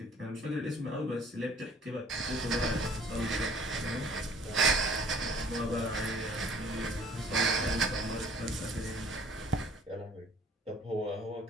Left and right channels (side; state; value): both; normal; correlation 0.54